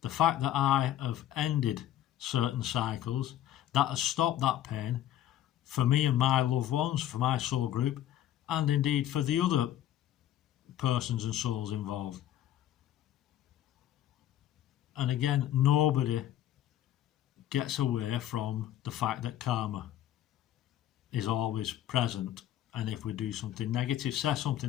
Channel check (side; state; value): right; quieter; 12.2 dB